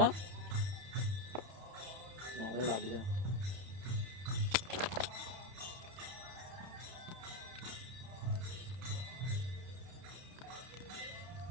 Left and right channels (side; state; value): left; late; 31 ms